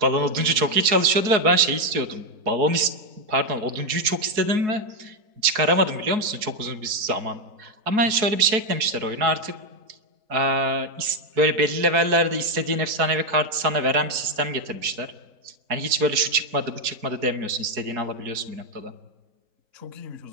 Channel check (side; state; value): left; late; 4.6 ms